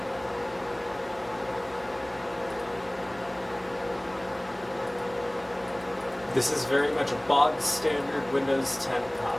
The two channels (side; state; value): left; noise; hum, 28 dB below the sound